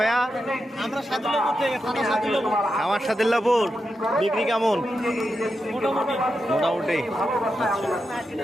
আমরা সাদুল্লাপুর থেকে, থানা সাদুল্লাপুর। আমার সাদিল্লাপুর। বিক্রি কেমন? মোটামুটি।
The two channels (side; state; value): both; normal; correlation 0.88